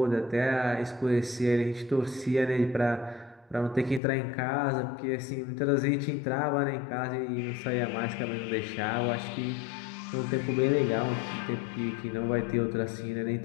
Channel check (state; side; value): drops out; right; at 4.0 s